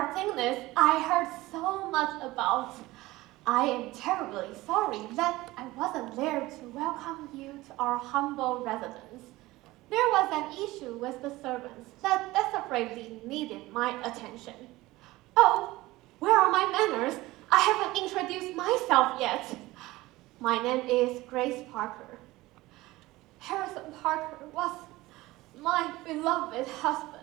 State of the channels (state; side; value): quieter; left; 18.9 dB